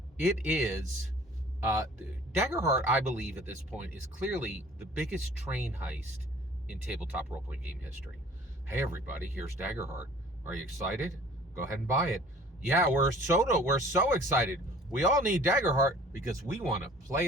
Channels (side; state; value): both; normal; correlation 0.50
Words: It is Daggerheart, I believe at this point, is clearly the biggest train heist in tabletop role-playing game history. Hey everybody, here's Daggerheart. Are you excited? Go ahead and buy it. Yeah, we're so excited. We all need Daggerheart because we want to play